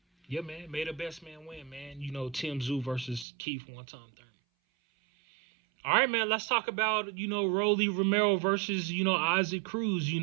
yeah, man, may the best man win, man. Tim Tszyu versus Keith one time Thurman. All right, man, let's talk about, Romero versus, Isaac Cruz,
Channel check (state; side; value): drops out; left; at 3.2 s